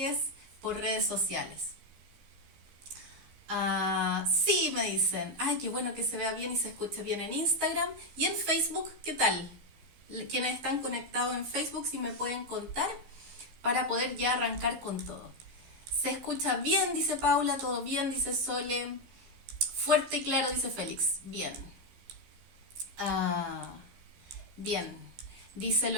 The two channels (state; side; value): late; left; 15 ms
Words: por redes sociales. Sí, me dicen. Ay, qué bueno que se vea bien y se escuche bien en Instagram. Y en Facebook, ¿qué tal? Quienes están conectados en Facebook, si me pueden contar para poder ya arrancar con todo. Se escucha bien, dice Paula, todo bien, dice Sole. Fuerte y claro, dice Félix. Bien. Ah, bien. Dice